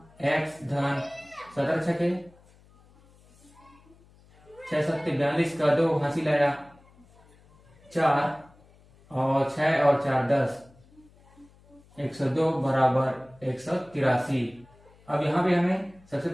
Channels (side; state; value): left; noise; hum, 28 dB below the sound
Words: धन 17 छके 6 7 42 का 2 हासिल आया 4 और 6 और 4 10 102 बराबर 183। अब यहाँ पे हमें सबसे